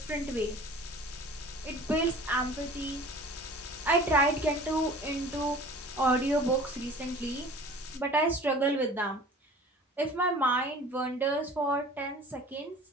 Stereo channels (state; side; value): normal; both; correlation 0.44